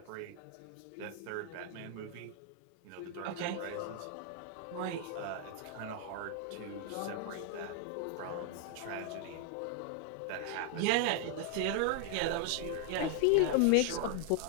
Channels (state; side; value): different; both; correlation 0.00